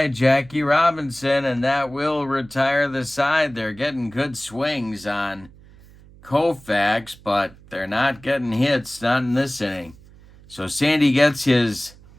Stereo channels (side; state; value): right; noise; hum, 23 dB below the sound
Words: Jackie Robinson, and that will retire the side. They're getting good swings on Koufax, but they're not getting hits, not in this inning. So Sandy gets his